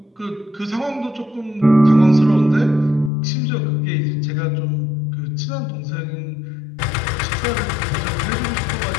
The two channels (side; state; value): right; drops out; at 3.1 s